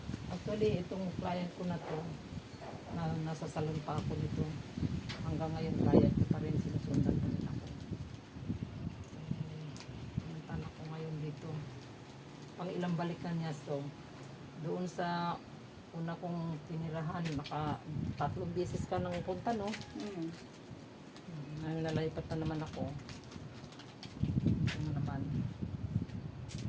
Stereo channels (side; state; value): both; identical; correlation 1.00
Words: Actually, itong client ko na to, nasa salon pa ako nito. Hanggang ngayon, client ko pa rin. Sinusundan ko nila ako. Punta na ako ngayon dito. Pang ilang balikan niya. So, doon sa una kong tinirahan, 3 beses ka nang punta, no? Nalalipat na naman ako. Ano naman.